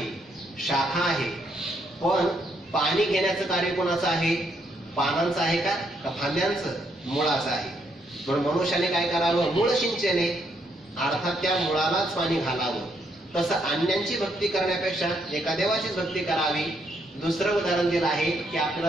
शाखा आहे, पण पाणी घेण्याचं कार्य कोणाचं आहे? पानांचं आहे का फांद्यांचं? मुळाचं आहे. म्हणून मनुष्याने काय करावं? मूळ सिंचने, अर्थात त्या मुळालाच पाणी घालावं. तसं अन्यांची भक्ती करण्यापेक्षा एका देवाचीच भक्ती करावी. दुसरं उदाहरण दिलं आहे की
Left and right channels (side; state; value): both; normal; correlation 0.74